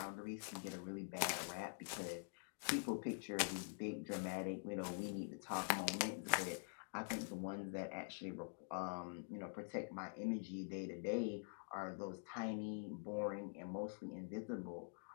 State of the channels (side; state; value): right; silent; digital silence